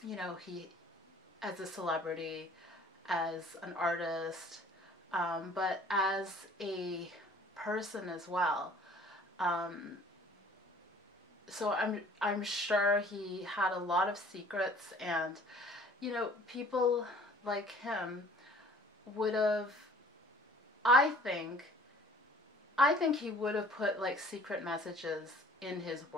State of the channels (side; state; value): both; normal; correlation 0.51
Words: he, as a celebrity, as an artist, but as a person as well. So I'm sure he had a lot of secrets, and people like him would have, I think he would have put like secret messages in his